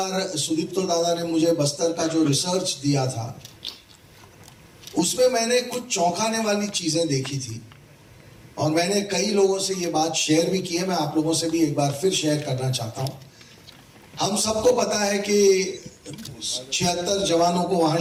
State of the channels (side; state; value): both; identical; correlation 1.00